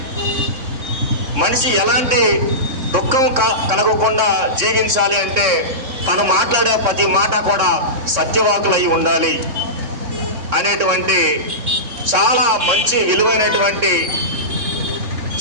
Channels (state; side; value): late; left; 3.6 ms